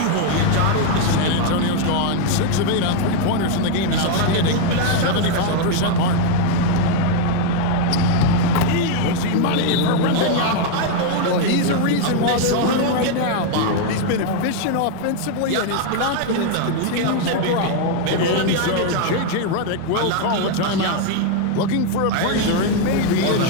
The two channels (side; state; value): both; different; correlation 0.01